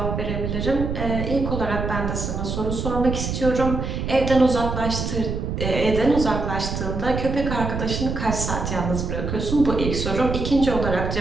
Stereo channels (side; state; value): right; noise; rumble, 3 dB below the sound